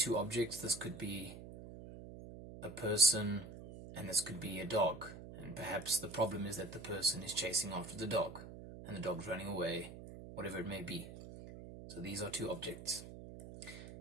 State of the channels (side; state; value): right; noise; hum, 13 dB below the sound